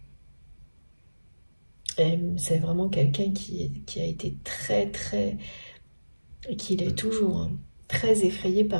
C'est vraiment quelqu'un qui a été et qui l'est toujours, hein, très effrayé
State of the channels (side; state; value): both; inverted; correlation -1.00